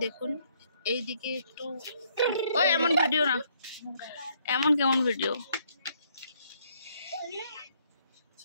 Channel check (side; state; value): both; inverted; correlation -0.68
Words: দেখুন এইদিকে একটু, ওই এমন ভিডিও না, এমন কেমন ভিডিও।